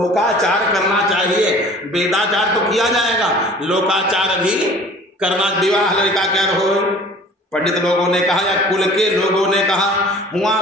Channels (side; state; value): both; normal; correlation 0.47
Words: करना चाहिए, वेदाचार तो किया जाएगा, लोकाचार भी करना। विवाह लड़का क्या हो, पंडित लोगों ने कहा या कुल के लोगों ने कहा, हुआ